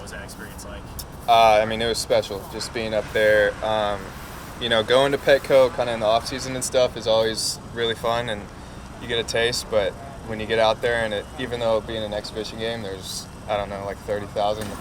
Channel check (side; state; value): both; identical; correlation 1.00